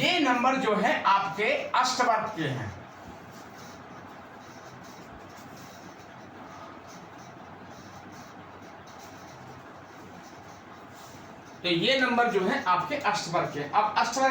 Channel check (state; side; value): identical; both; correlation 1.00